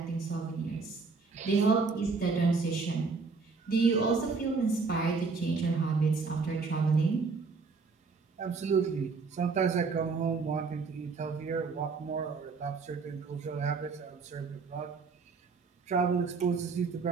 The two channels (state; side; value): quieter; left; 4.6 dB